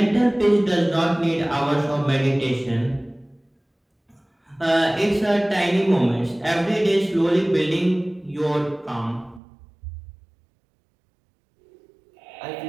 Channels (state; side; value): drops out; left; at 9.4 s